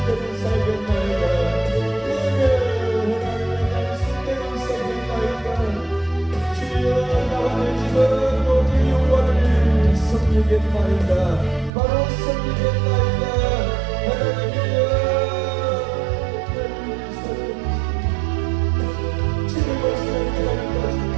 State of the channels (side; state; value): left; drops out; at 11.7 s